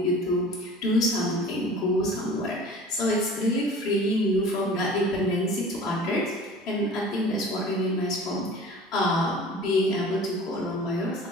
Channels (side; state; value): both; normal; correlation 0.43